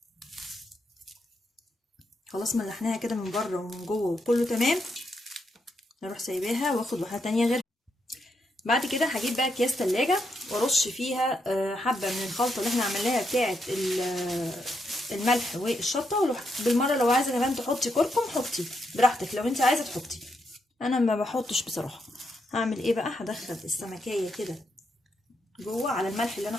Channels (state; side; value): normal; both; correlation 0.80